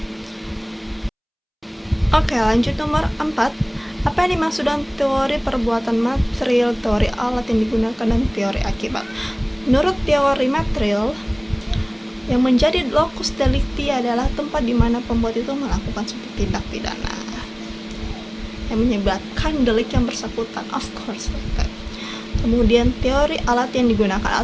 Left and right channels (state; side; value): identical; both; correlation 1.00